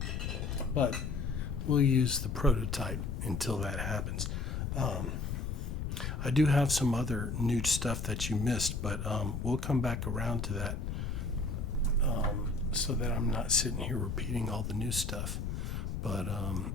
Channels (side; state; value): left; noise; rumble, 3 dB below the sound